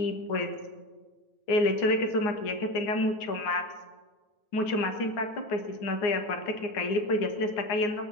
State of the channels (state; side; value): late; right; 9.7 ms